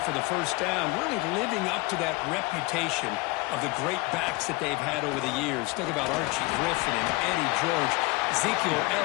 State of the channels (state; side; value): quieter; right; 24.1 dB